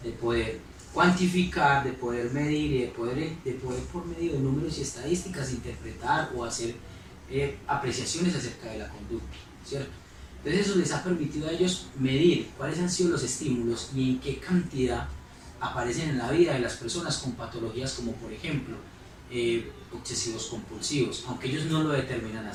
de poder cuantificar, de poder medir y de poder por medio de números y estadísticas interpretar o hacer apreciaciones acerca de la conducta, ¿cierto? Entonces eso les ha permitido a ellos medir cuáles han sido los estímulos y en qué cantidad aparecen en la vida de las personas con patologías como, por ejemplo, obsesivos compulsivos, aunque ellos no lo determinan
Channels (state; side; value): identical; both; correlation 1.00